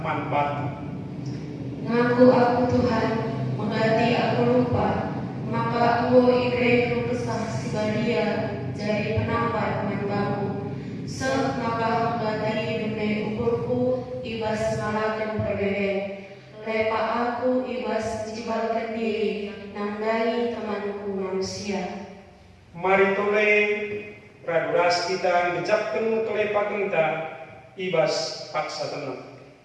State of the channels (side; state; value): both; identical; correlation 1.00